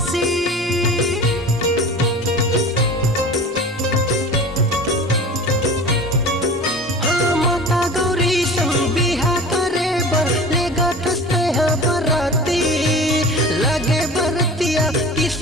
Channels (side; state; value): both; normal; correlation 0.38